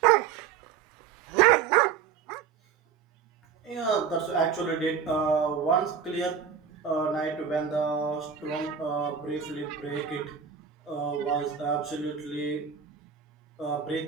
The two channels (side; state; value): left; quieter; 7.1 dB